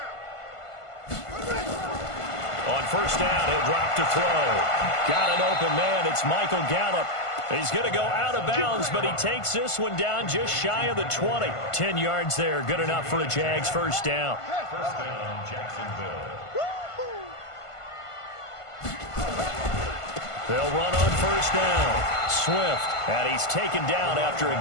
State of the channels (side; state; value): right; late; 1.5 ms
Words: On first down, he'll drop to throw. Got an open man. It's Michael Gallup. He's going to go out of bounds, but he takes this one down just shy of the 20. 10 yards there. Good enough for a Jags first down. First down, Jacksonville. They'll run on first down. Swift. And he's taken down after